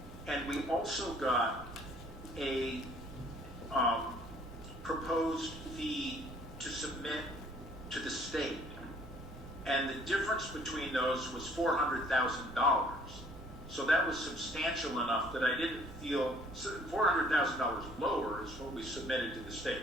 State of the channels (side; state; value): both; normal; correlation 0.58